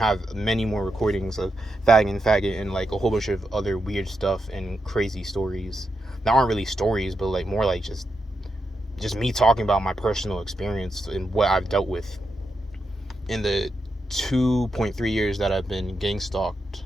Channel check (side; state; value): both; normal; correlation 0.85